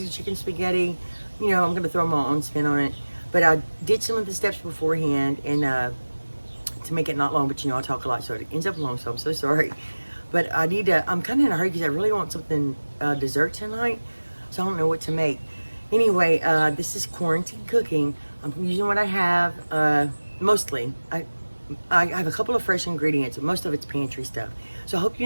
chicken spaghetti. You know, I'm gonna throw my own spin on it. But I did some of the steps beforehand, and to make it not long, but you know, I talk a lot, so it ends up long, so I'm so sorry. But I need to, I'm kind of in a hurry because I really want something dessert tonight, so I don't know what to make. Anyway, this is quarantine cooking. I'm using what I have, mostly. I have a couple of fresh ingredients, but most of it's pantry stuff. So I hope you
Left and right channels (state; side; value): inverted; both; correlation -1.00